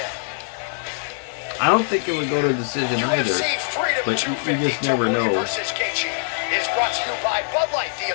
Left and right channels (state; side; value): silent; right; digital silence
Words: I don't think it would go to a decision either, but you just never know. Is brought to you by Bud Light, the